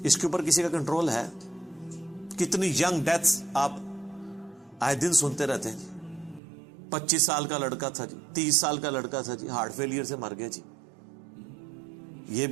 اس کے اوپر کسی کا کنٹرول ہے؟ کتنی ینگ ڈیتھس آپ آئے دن سنتے رہتے ہیں. 25 سال کا لڑکا تھا جی، 30 سال کا لڑکا تھا جی، ہارٹ فیلئر سے مر گیا جی. یہ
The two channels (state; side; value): drops out; left; at 6.4 s